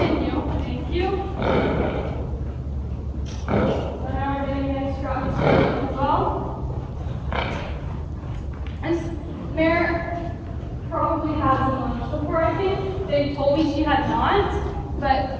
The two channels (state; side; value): identical; both; correlation 1.00